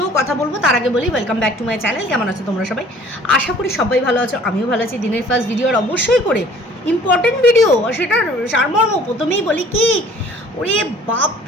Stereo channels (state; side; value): normal; both; correlation 0.52